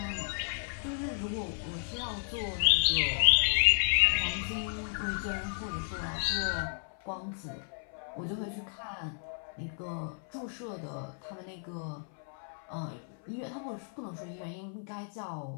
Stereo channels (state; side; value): silent; right; 56 dB below the other